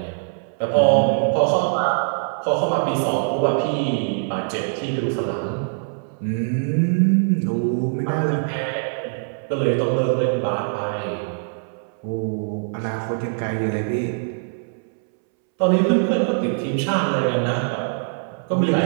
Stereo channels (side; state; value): left; silent; 64 dB below the other